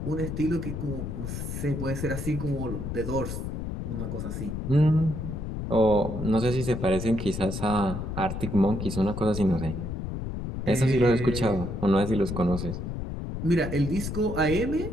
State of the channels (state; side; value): noise; left; rumble, 5 dB below the sound